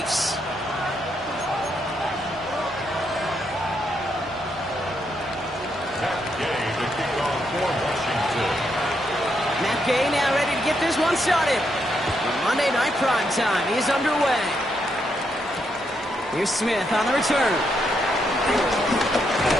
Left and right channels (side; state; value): both; normal; correlation 0.78